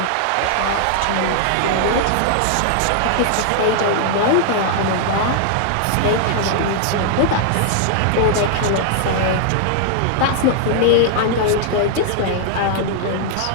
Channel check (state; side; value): different; both; correlation 0.00